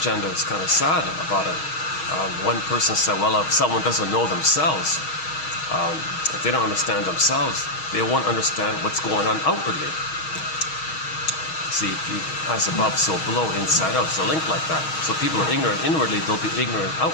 is kind of sad about it. One person said, well, if someone doesn't know themselves, if they don't understand themselves, they won't understand what's going on outwardly. See, as above, so below, inside out. It's a link like that. So people are ignorant inwardly, they'll be ignorant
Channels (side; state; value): right; late; 6.3 ms